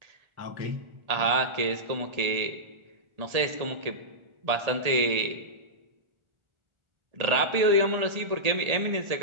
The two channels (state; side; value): late; left; 1.8 ms